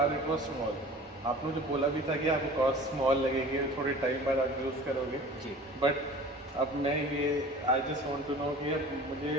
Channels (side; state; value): both; normal; correlation 0.42